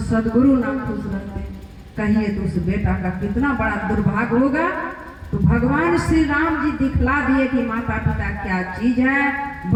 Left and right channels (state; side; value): identical; both; correlation 1.00